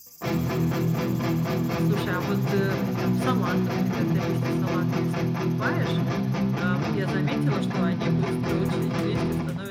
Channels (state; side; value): identical; both; correlation 1.00